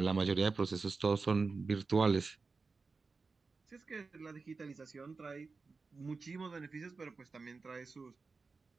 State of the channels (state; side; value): quieter; left; 4.3 dB